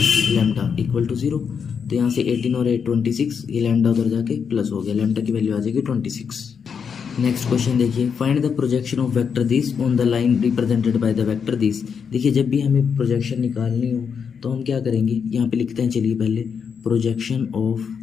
लैम्डा इक्वल टू 0। तो यहाँ से 18 और 8 26, ये लैम्डा उधर जाके प्लस हो गया, लैम्डा की वैल्यू आ जाएगी 26। नेक्स्ट क्वेश्चन देखिए, find the projection of vector this on the line represented by the vector this. देखिए जब भी हमें प्रोजेक्शन निकालनी हो तो हम क्या करेंगे, यहाँ पे लिखते हैं चलिए पहले प्रोजेक्शन ऑफ,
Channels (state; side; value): quieter; right; 6.6 dB